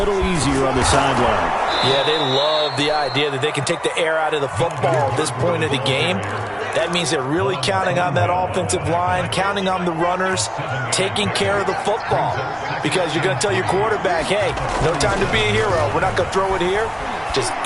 easier on the sideline. Yeah, they love the idea that they can take the air out of the football at this point of the game. That means they're really counting on that offensive line, counting on the runners, taking care of the football. because you're going to tell your quarterback, hey, no time to be a hero. We're not going to throw it here. Just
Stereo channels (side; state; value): both; identical; correlation 1.00